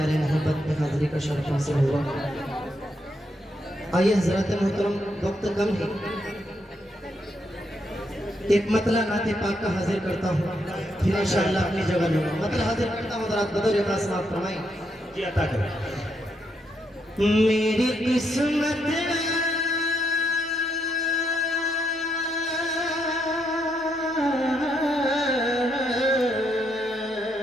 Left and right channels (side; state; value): both; normal; correlation 0.78